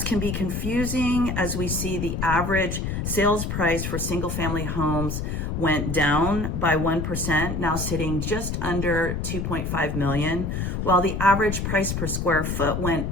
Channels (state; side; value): noise; left; rumble, 2 dB below the sound